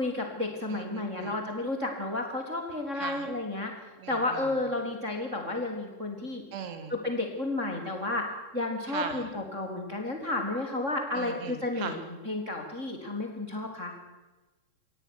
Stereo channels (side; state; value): left; late; 3.7 ms